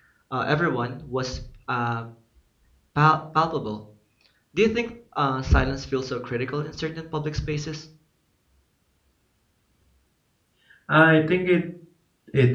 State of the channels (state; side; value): identical; both; correlation 1.00